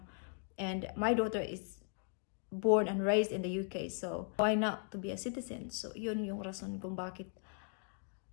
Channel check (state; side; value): silent; right; 52 dB below the other